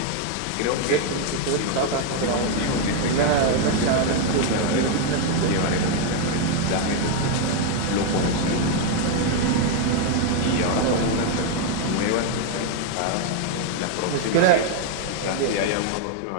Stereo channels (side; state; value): both; different; correlation 0.01